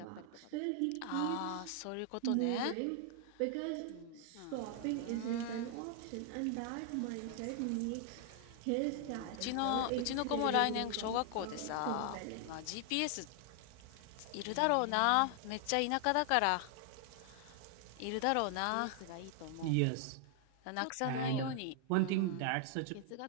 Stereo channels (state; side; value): different; both; correlation 0.00